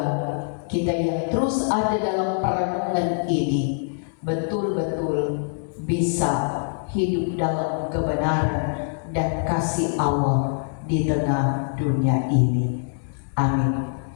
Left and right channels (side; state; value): right; silent; digital silence